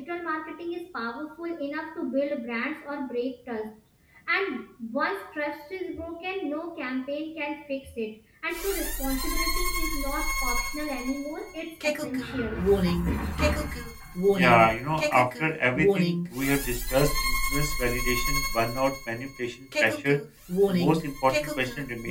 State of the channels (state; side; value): identical; both; correlation 1.00